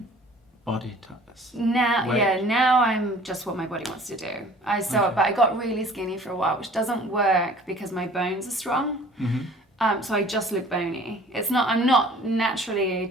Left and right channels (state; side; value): normal; both; correlation 0.50